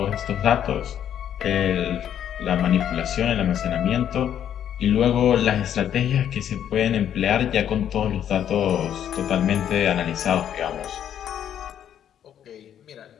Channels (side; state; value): right; quieter; 9.8 dB